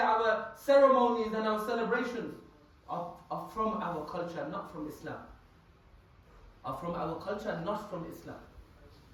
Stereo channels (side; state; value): both; identical; correlation 1.00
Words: ceremonies and our celebrations, are from our culture, not from Islam. Are from our culture, not from Islam.